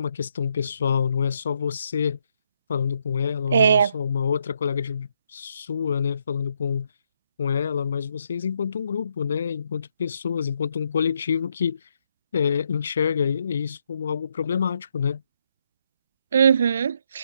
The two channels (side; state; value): both; inverted; correlation -0.76